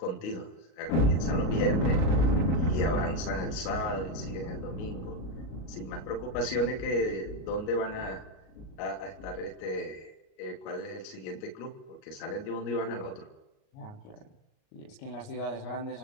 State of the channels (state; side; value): late; right; 38 ms